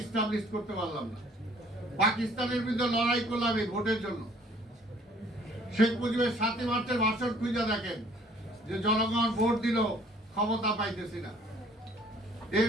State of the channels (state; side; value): normal; both; correlation 0.57